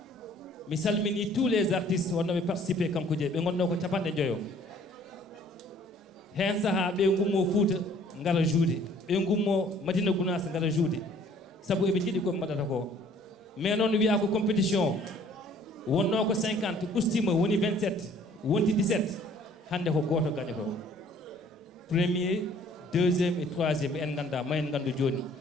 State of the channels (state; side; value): normal; both; correlation 0.56